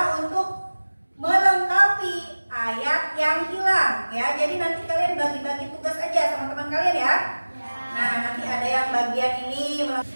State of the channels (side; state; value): both; inverted; correlation -1.00